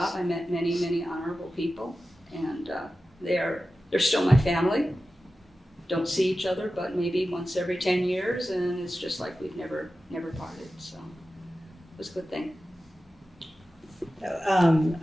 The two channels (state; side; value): normal; both; correlation 0.94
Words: I met many honorable people, and they're still my family. Don't see each other, but maybe once every 10 years, and it's just like we've never parted. So it was a good thing.